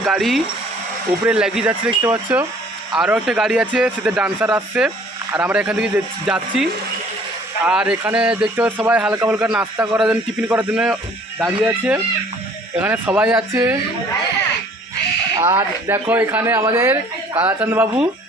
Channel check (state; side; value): normal; both; correlation 0.55